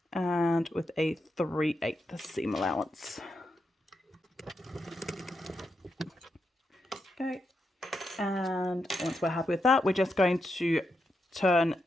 And with a 3/8 seam allowance. Okay, and once we're happy with that, we're just going to turn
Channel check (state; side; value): normal; both; correlation 0.84